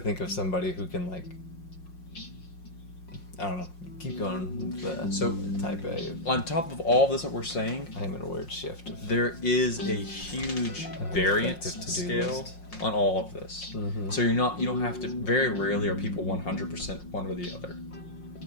of somebody who can like I don't know, keep going with the So type A. on top of all this that we're saying, I am in a weird shift of there is a huge variance effective to-do scale list. on all of this. Mhm. So you don't have to. Very rarely are people 100% one or the other.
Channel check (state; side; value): late; right; 5.6 ms